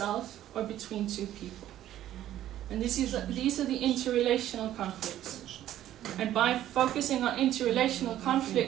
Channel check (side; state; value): left; quieter; 12.5 dB